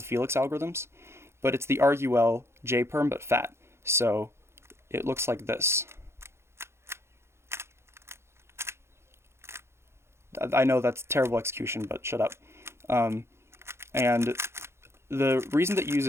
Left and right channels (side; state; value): left; late; 0.13 ms